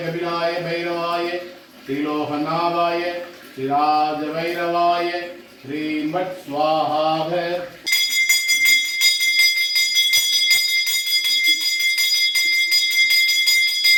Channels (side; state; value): both; identical; correlation 1.00